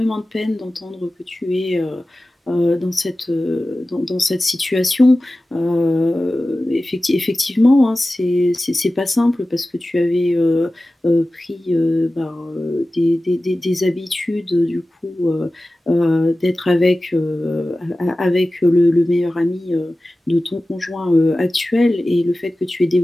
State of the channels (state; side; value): normal; both; correlation 0.96